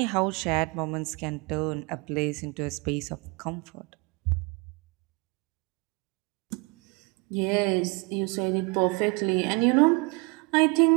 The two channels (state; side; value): quieter; left; 29.5 dB